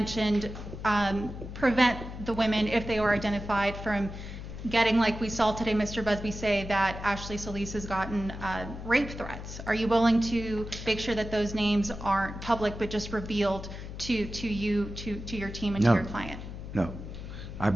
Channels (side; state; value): left; noise; hum, 10 dB below the sound